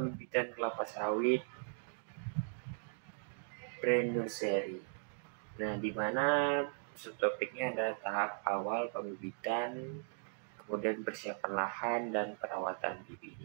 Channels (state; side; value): silent; left; digital silence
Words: kelapa sawit brand nursery. Nah, di mana subtopiknya adalah tahap awal pembibitan, kemudian persiapan lahan dan perawatan